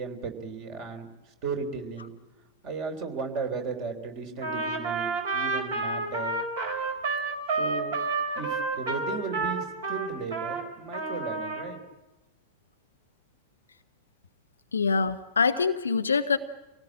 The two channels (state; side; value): inverted; both; correlation -0.34